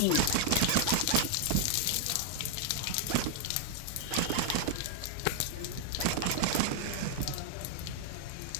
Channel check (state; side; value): different; both; correlation -0.01